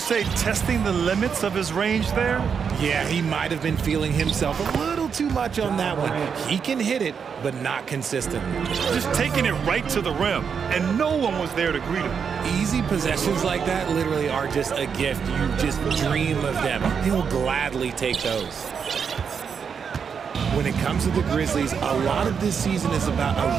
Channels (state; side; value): quieter; left; 6.6 dB